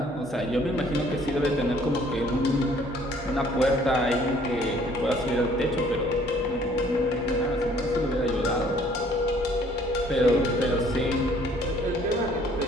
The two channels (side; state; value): both; normal; correlation 0.59